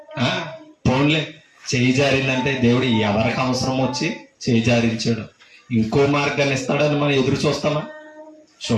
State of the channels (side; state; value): both; identical; correlation 1.00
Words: పోన్లే, చేయి జారిందంటే దేవుడు ఎవరికి అవసరం వచ్చి చేయి జారించాడు, ఇంకో మార్గాన్ని ఇస్తాడని మనం ఎదురు చూస్తామా?